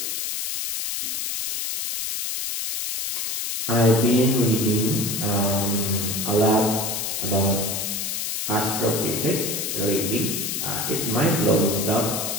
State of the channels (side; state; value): left; noise; hiss, 2 dB below the sound